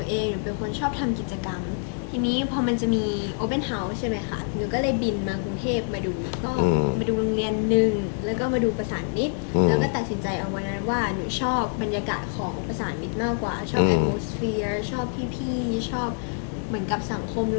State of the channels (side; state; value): right; silent; 61 dB below the other